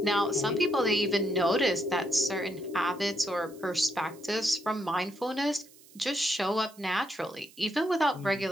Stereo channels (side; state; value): right; noise; hiss, 24 dB below the sound